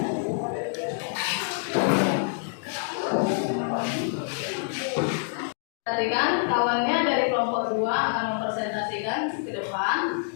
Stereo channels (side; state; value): right; silent; digital silence